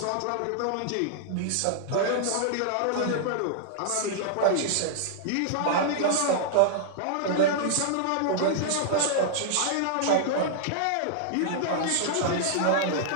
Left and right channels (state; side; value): different; both; correlation -0.01